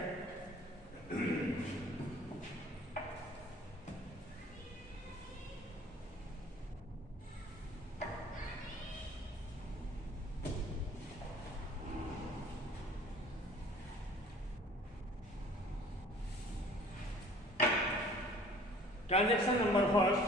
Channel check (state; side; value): normal; both; correlation 0.51